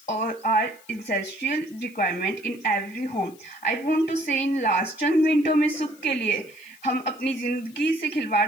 are essential requirement in every home. I want to say in last चंद मिनटों में सुख के लिए हम अपनी ज़िंदगी से खिलवाड़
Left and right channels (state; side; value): noise; left; hiss, 25 dB below the sound